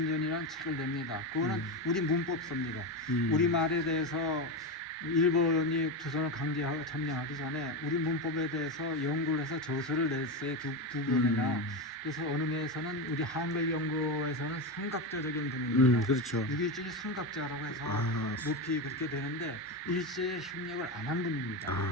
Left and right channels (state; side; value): normal; both; correlation 0.15